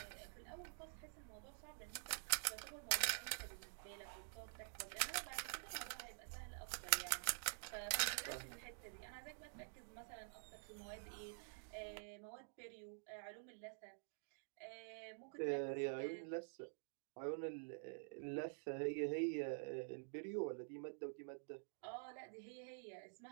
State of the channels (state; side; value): silent; left; digital silence